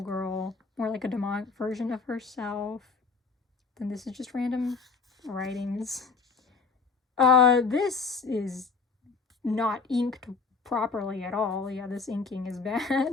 girl, more like a demonic version of herself. Then this is just random writings. This is not inked properly at all. Yeah, this inking is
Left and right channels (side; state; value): right; quieter; 4.6 dB